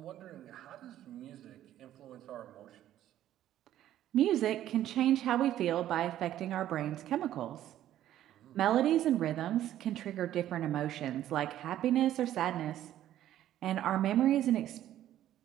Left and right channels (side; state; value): left; quieter; 12.4 dB